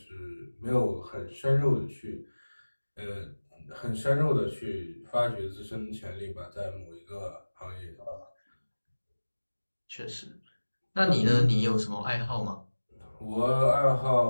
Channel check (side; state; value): both; inverted; correlation -1.00